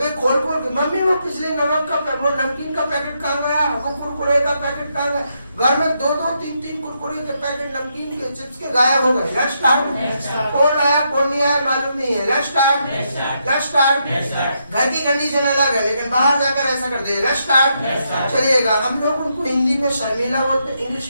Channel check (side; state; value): both; inverted; correlation -0.79